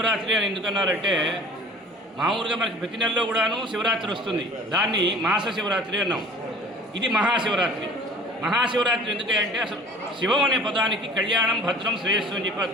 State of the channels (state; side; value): normal; both; correlation 0.47